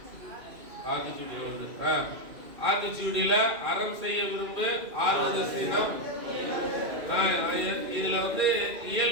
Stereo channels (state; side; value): late; left; 2.4 ms